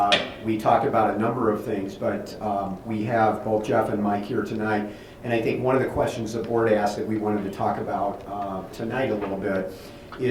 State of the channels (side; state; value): both; identical; correlation 1.00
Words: We talked about a number of things, but we have both Jeff and Mike here tonight. And I think one of the questions the board asked that we wanted to talk about tonight a little bit